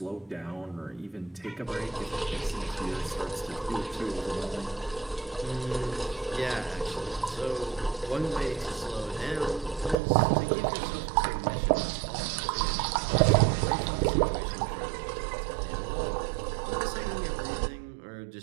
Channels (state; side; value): drops out; left; at 10.0 s